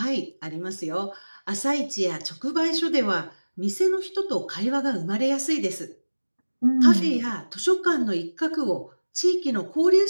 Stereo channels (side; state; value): both; inverted; correlation -1.00